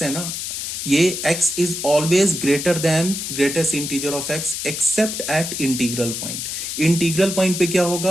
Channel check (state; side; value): noise; left; hiss, 5 dB below the sound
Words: है ना, ये x is always greater than greatest integer of x except at integral point. Integral point पे क्या